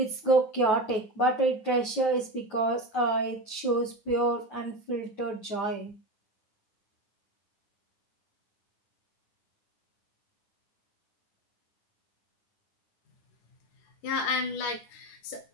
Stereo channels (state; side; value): late; right; 9.3 ms